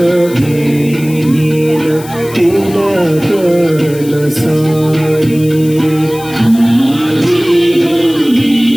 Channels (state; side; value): noise; left; hiss, 17 dB below the sound